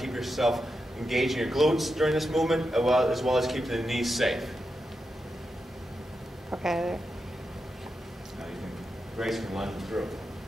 yourself engaging your glutes during this movement, as well as keeping the knees safe. Okay. Now you can, Grace can run through.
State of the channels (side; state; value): both; normal; correlation 0.87